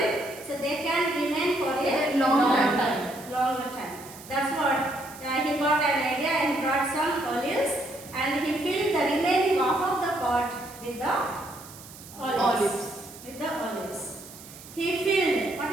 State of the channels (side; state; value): right; noise; hiss, 17 dB below the sound